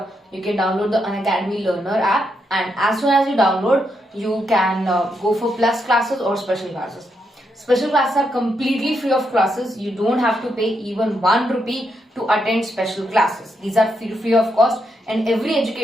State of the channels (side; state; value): both; normal; correlation 0.80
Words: you can download the Unacademy Learner app, and as soon as you download, you can go for plus classes or special classes. Special classes are completely free of classes. You don't have to pay even 1 rupee to attend special classes. These are free of cost, and every